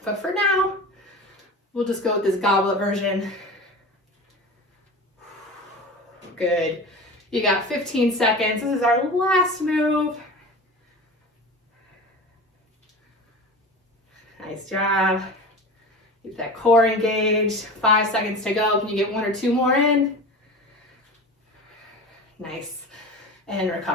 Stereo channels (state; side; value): normal; both; correlation 0.33